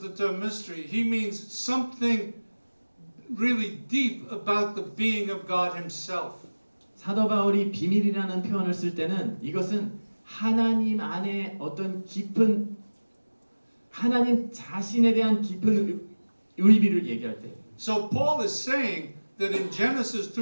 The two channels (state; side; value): inverted; both; correlation -1.00